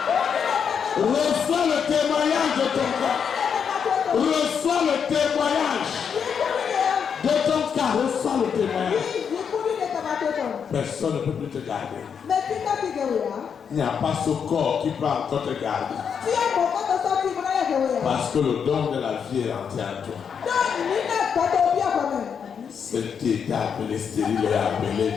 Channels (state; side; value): quieter; right; 7.1 dB